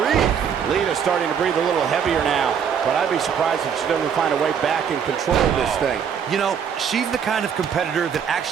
Lita starting to breathe a little heavier now, but I'd be surprised if she doesn't find a way back and control this thing. You know, she's the kind of competitor that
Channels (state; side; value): quieter; left; 7.6 dB